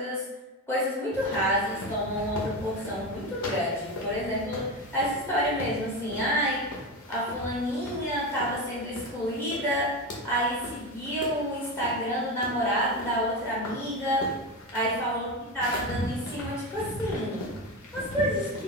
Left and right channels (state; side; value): normal; both; correlation 0.19